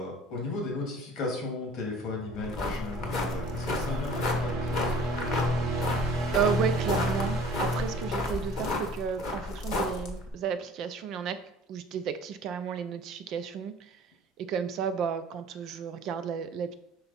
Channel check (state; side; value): normal; both; correlation 0.48